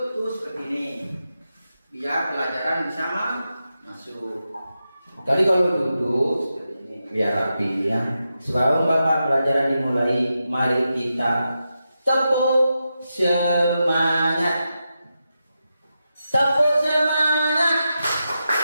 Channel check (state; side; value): inverted; both; correlation -0.89